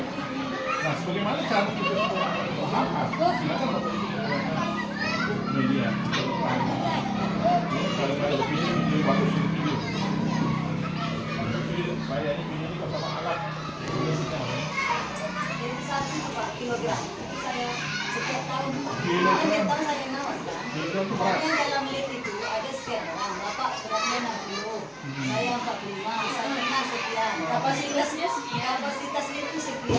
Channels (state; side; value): identical; both; correlation 1.00